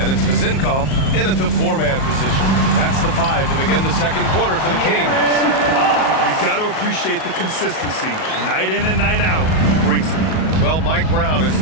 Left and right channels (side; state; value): right; late; 37 ms